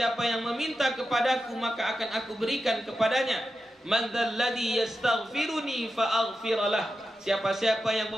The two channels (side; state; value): both; normal; correlation 0.90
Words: yang meminta kepadaku maka akan aku berikan kepadanya. Man dzalladzi yastaghfiruni fa aghfiralah, siapa-siapa yang